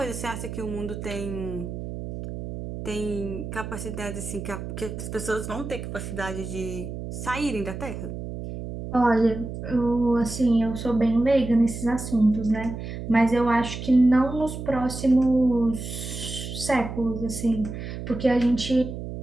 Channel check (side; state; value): right; noise; hum, 8 dB below the sound